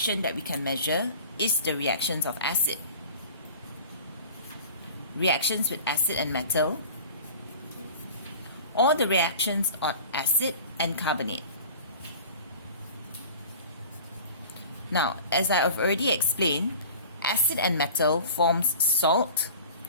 that we can measure is the reactions of acid. Reactions with acid and metal, or the reactions of acid and carbonate. Now, as I have already explained, acid and metal forms salt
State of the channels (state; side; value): inverted; both; correlation -0.41